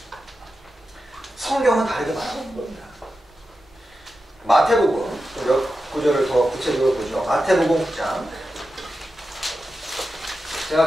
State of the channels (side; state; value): both; normal; correlation 0.91